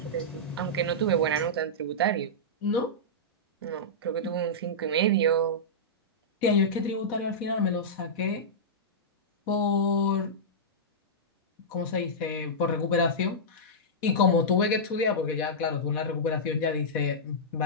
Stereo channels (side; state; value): both; normal; correlation -0.12